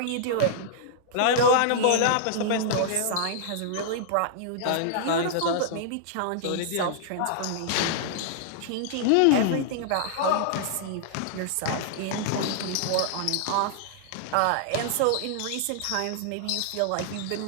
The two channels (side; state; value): both; different; correlation -0.01